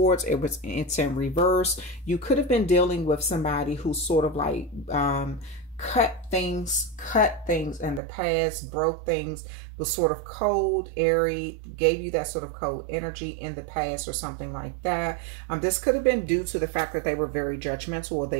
it's in reverse. You could have been dealing with somebody who sort of like cut things in the past, broke things, was sort of cold, airy, gave you that sort of cold energy in the past or something like that. This could have been due to the fact that they were very judgmental, or they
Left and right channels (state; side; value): drops out; left; at 8.0 s